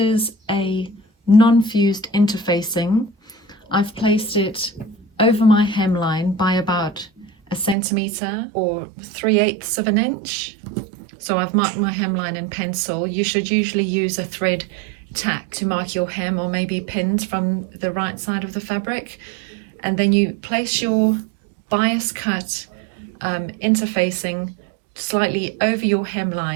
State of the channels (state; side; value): drops out; left; at 7.8 s